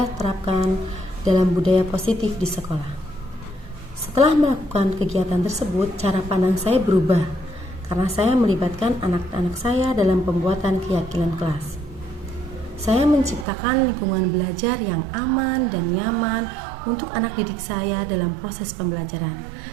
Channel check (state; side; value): drops out; left; at 13.5 s